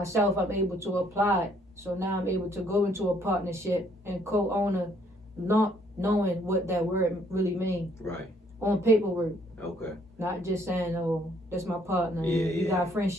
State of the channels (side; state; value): both; normal; correlation 0.66